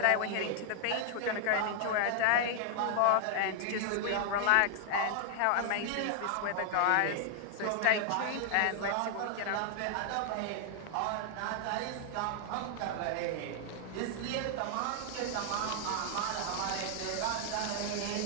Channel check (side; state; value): both; different; correlation 0.00